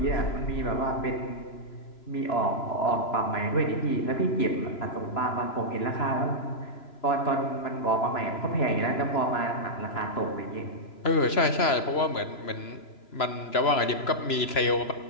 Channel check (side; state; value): right; late; 3.0 ms